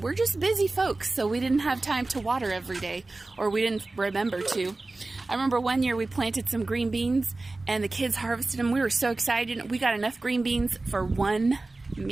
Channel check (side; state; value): left; quieter; 3.2 dB